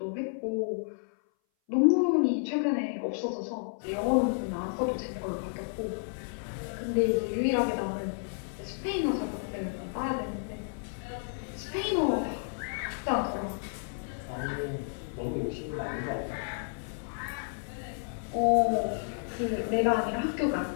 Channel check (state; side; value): silent; right; 57 dB below the other